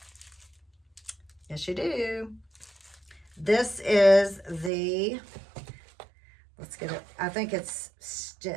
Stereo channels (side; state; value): left; drops out; at 4.7 s